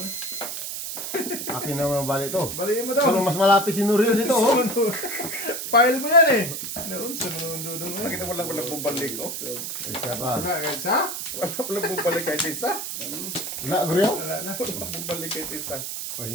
Akin naman bali ito. Baliin mo daw. Pero mas malapit si Nuriel dito, oh. File mo yan eh. Noon sa mundo doon eh. Bakit walang bumalik oh? Isa pa. Wala kahit sa? Walang bumalik kahit isa. Wala, Guriel? Wala na. Walang bumalik kahit isa. Oh,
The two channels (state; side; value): noise; right; hiss, 5 dB below the sound